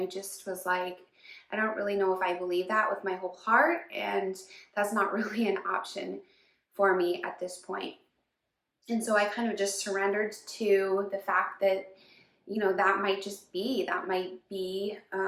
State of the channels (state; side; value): identical; both; correlation 1.00